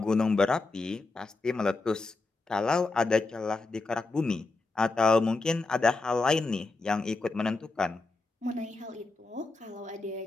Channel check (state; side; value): quieter; right; 3.5 dB